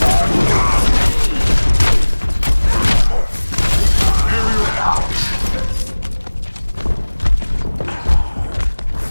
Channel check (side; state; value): both; inverted; correlation -1.00